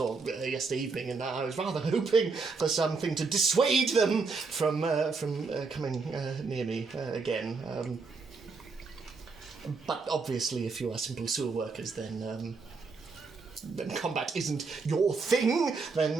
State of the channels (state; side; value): quieter; left; 4.5 dB